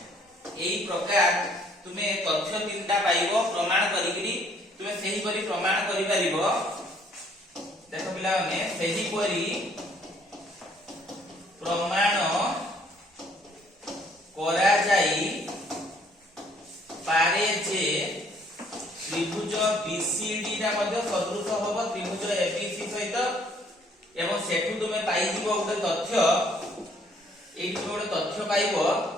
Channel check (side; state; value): both; normal; correlation 0.63